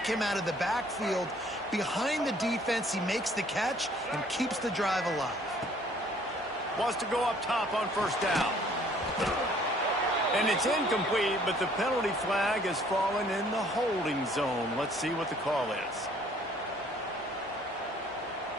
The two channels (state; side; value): normal; both; correlation 0.58